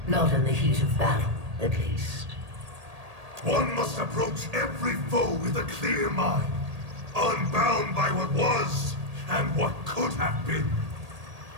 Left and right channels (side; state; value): left; late; 1.8 ms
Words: Not in the heat of battle, at least. One must approach every foe with a clear mind, unbound by what was and what could have been.